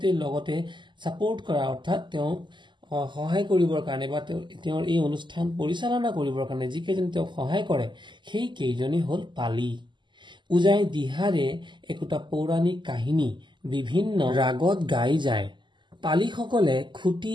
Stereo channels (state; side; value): late; left; 0.22 ms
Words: লগতে ছাপোৰ্ট কৰা অৰ্থাৎ তেওঁক সহায় কৰিবৰ কাৰণে বা তেওঁৰ এই অনুষ্ঠান পৰিচালনা কৰিবৰ কাৰণে যিকেইজন তেওঁক সহায় কৰে সেই কেইজনেই হ'ল পালি। ওজাই দিহাৰে একোটা পৌৰাণিক কাহিনী বিভিন্ন ৰাগত গাই যায়। পালিসকলে খুটি